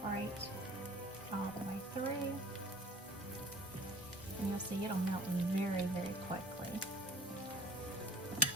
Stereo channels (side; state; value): both; normal; correlation 0.48